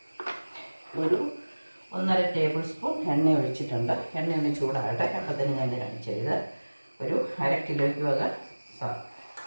ഒരു 1.5 ടേബിൾ സ്പൂൺ എണ്ണ ഒഴിച്ചിട്ടുണ്ട്. എണ്ണ ഒന്ന് ചൂടാകട്ടെ. അപ്പത്തിന് ഞാൻ കാണിച്ചത് ഒരു 1/2 കിലോയ്ക്ക് വക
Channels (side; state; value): both; inverted; correlation -1.00